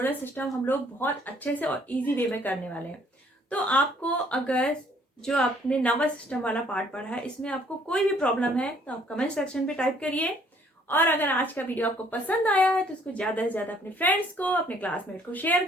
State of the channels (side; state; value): both; normal; correlation 0.62